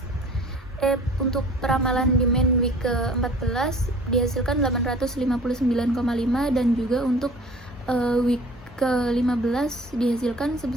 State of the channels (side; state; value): both; normal; correlation 0.47